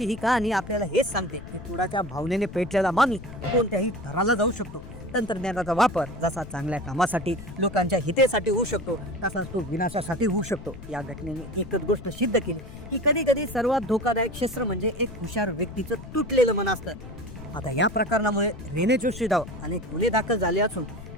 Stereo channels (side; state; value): left; noise; rumble, 14 dB below the sound